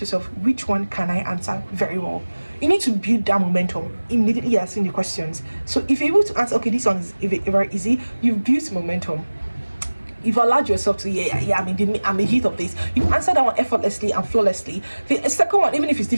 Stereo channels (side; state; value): both; inverted; correlation -1.00